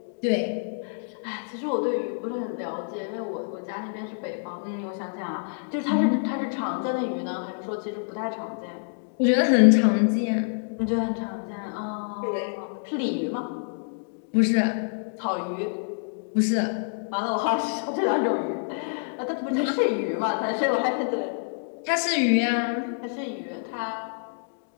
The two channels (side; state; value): right; silent; digital silence